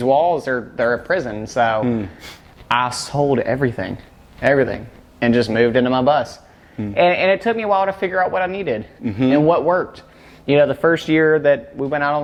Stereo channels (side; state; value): both; identical; correlation 1.00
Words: walls they're a prison. So I sold everything, and just moved into my bus. And it took me a while to figure out what I needed and what worked. You know, the first year that we went out on